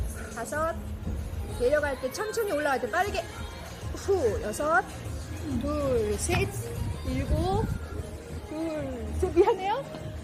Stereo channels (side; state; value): both; identical; correlation 1.00